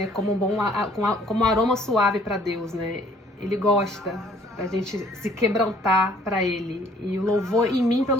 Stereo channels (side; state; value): both; normal; correlation 0.59